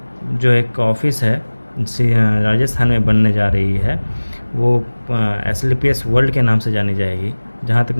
जो एक ऑफिस है राजस्थान में बनने जा रही है, वो एसलीपीएस वर्ल्ड के नाम से जानी जाएगी। जहाँ तक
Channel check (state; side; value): inverted; both; correlation -1.00